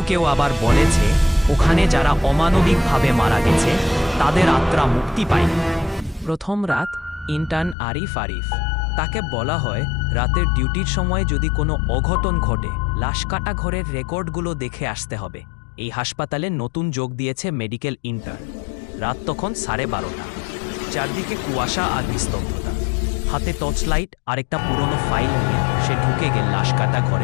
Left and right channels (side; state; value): right; drops out; at 7.8 s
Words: কেউ আবার বলেছে ওখানে যারা অমানবিকভাবে মারা গেছে তাদের আত্মা মুক্তি পায়নি। প্রথম রাত ইন্টার্ন আরিফ। তাকে বলা হয় রাতের ডিউটির সময় যদি কোনো অঘটন ঘটে লাশ কাটা ঘরের রেকর্ডগুলো দেখে আসতে হবে। এই হাসপাতালে নতুন যোগ দিয়েছে মেডিকেল ইন্টার্ন। রাত তখন 12:30। চারদিকে কুয়াশা আর নিস্তব্ধতা। হাতে টর্চ লাইট আর একটা পুরনো ফাইল নিয়ে সে ঢুকে গেল লাশ কাটা